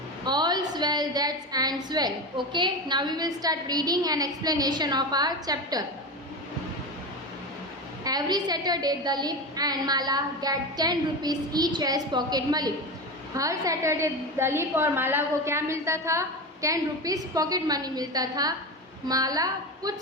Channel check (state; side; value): normal; both; correlation 0.22